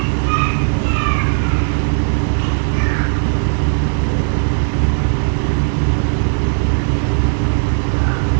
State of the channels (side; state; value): left; silent; digital silence